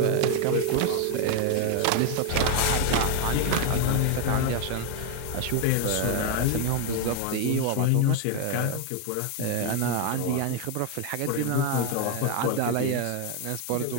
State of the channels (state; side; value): different; both; correlation 0.01